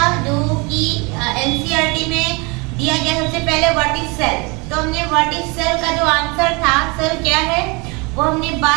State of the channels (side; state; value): left; quieter; 28.6 dB